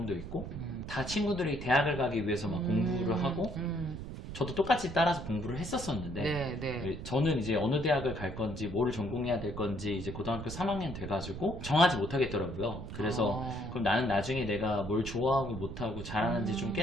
있고 다 친구들이 대학을 가기 위해서 막 공부를 하고 저도 똑같이 따라서 공부를 했었었는데 네. 저는 이제 어느 대학을 갈 건지 뭘 전공해야 될 건지 이제 고등학교 3학년 돼가지고 정하지 못하겠더라고요. 그래서 그럼 나는 나중에 내가 뭘 좋아하고 못하고 잘하는지 좀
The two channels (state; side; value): noise; right; rumble, 9 dB below the sound